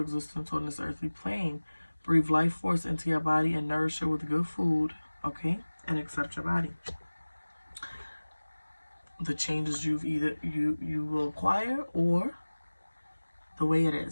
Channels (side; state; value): both; inverted; correlation -1.00